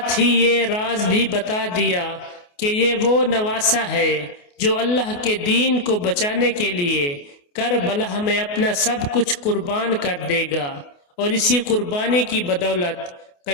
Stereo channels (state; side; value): late; right; 28 ms